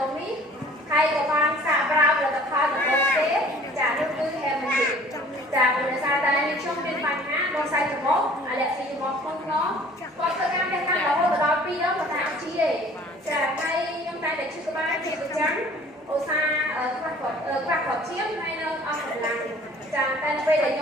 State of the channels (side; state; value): both; normal; correlation 0.50